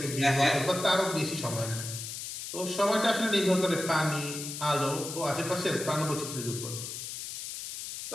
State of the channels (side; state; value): left; noise; hiss, 7 dB below the sound